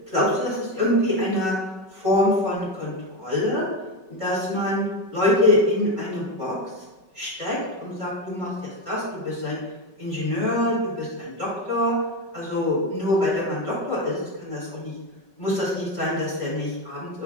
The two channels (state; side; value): late; left; 5.3 ms